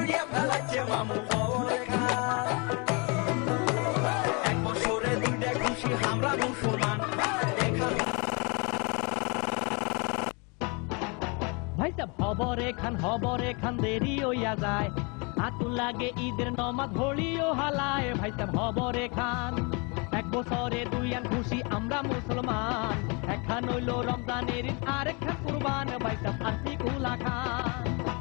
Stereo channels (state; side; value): quieter; right; 31.5 dB